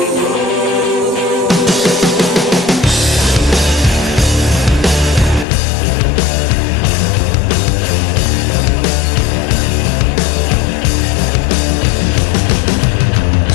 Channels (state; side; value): drops out; right; at 5.5 s